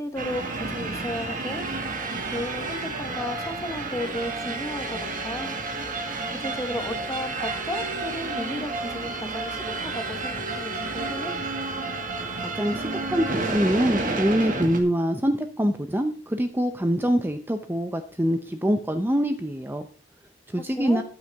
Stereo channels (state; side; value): normal; both; correlation 0.70